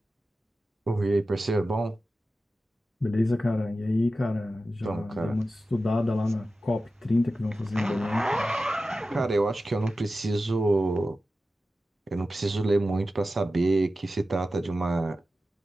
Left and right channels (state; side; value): normal; both; correlation 0.93